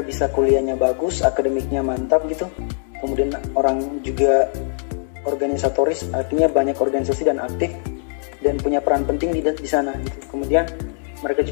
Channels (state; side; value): silent; right; 57 dB below the other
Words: bisa kuliahnya bagus, akademiknya mantap gitu. Kemudian orang juga organisatoris, artinya banyak organisasi dan aktif dan punya peran penting di sana gitu. Kemudian mereka